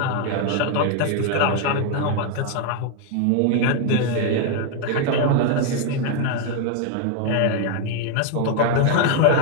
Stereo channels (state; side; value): different; both; correlation 0.01